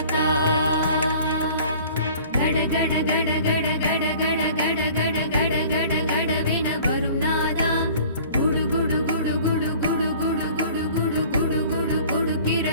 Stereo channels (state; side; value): inverted; both; correlation -0.48